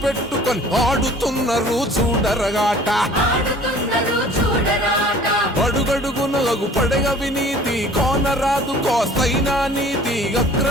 పెట్టుకొని ఆడుతున్నారు చూడరగాట. అడుగడుగునగు పడగ వినీతి కోనరాదు కోస్తైనా నీతి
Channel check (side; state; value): both; normal; correlation 0.49